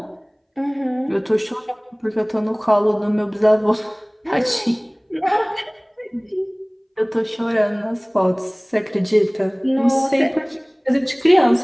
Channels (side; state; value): both; identical; correlation 1.00